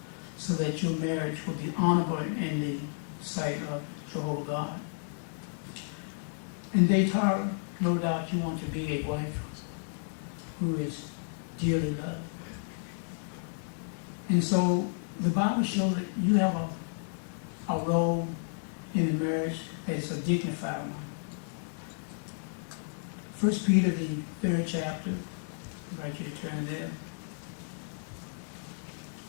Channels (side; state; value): right; silent; digital silence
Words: so that your marriage will be honorable in the sight of Jehovah God. And DaeTara, no doubt you want to be a wife who is dearly loved. And so the Bible shows that you have a role in the marriage that is a dignified one. 1 Peter, the 3rd chapter, I invite you to turn there.